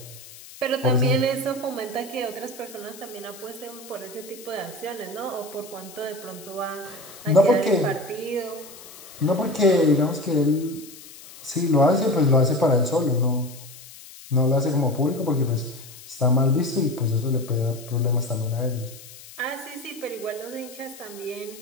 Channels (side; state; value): left; noise; hiss, 18 dB below the sound